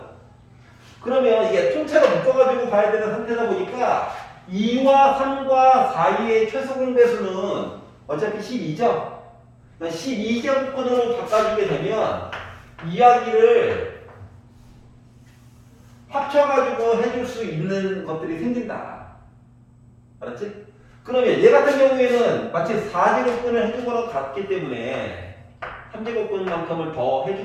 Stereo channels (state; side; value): identical; both; correlation 1.00